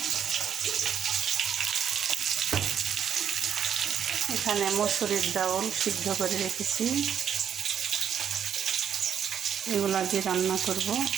এখানে মসুরির ডাউল সিদ্ধ করে রেখেছি, এগুলো দিয়ে রান্না করব।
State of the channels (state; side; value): quieter; left; 8.5 dB